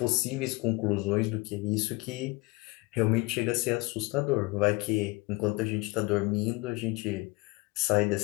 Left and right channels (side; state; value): right; quieter; 24.8 dB